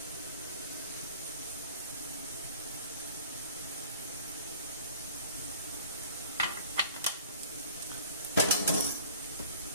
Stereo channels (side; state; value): both; inverted; correlation -0.48